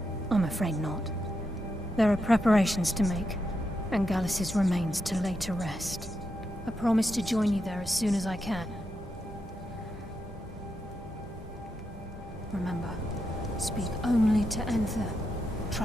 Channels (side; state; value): both; normal; correlation 0.84